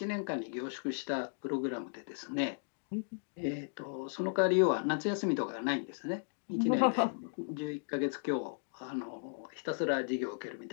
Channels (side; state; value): right; silent; digital silence